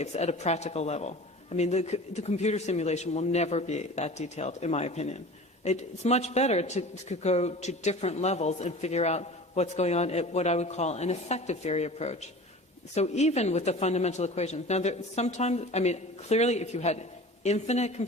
at a practical level. I mean, the computer simulation will never be that detailed, in my opinion. It's much better to go to different levels and figure out what's going on at what I would call an effective theory approach. So even with the fundamental equations, now sometimes, I mean, clearly if you had infinite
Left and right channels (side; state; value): both; normal; correlation 0.39